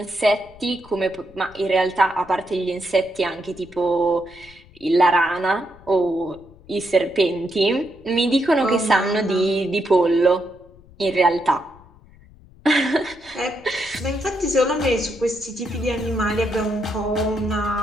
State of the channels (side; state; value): left; noise; rumble, 24 dB below the sound